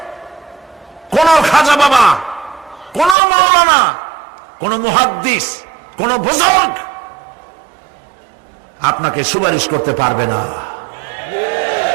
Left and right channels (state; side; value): drops out; left; at 3.2 s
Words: কোন খাজা বাবা, কোন মাওলানা, কোন মুহাদ্দিস, কোন বুজুর্গ আপনাকে সুপারিশ করতে পারবে না